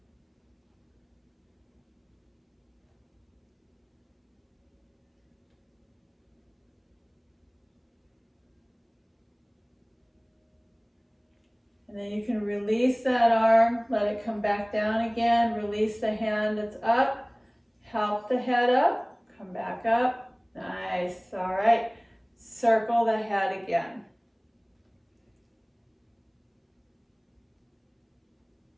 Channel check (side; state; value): both; identical; correlation 1.00